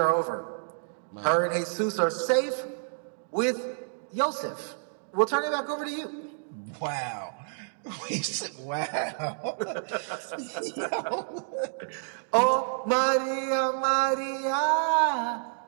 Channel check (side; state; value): left; silent; digital silence